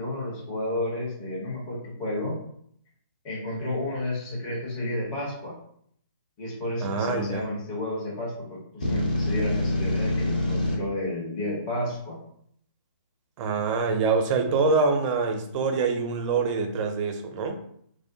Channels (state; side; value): inverted; both; correlation -0.44